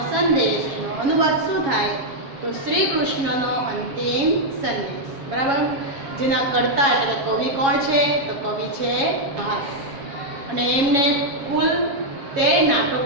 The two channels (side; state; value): left; late; 7.3 ms